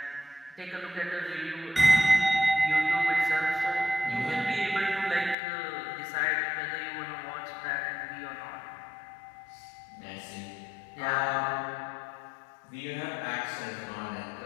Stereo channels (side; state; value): right; drops out; at 5.4 s